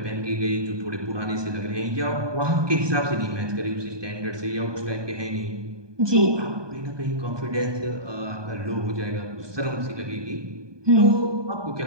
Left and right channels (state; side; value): late; left; 1.2 ms